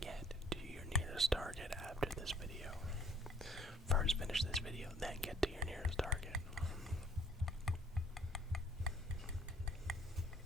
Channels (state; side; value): normal; both; correlation 0.59